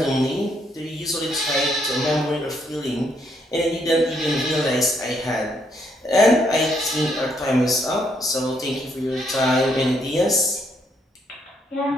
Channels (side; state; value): both; normal; correlation 0.73